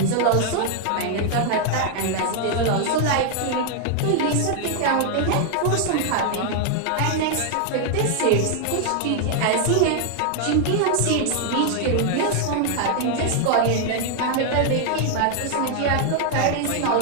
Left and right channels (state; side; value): different; both; correlation 0.00